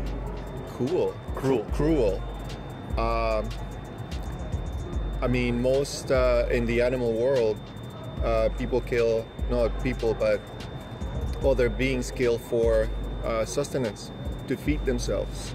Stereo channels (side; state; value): both; identical; correlation 1.00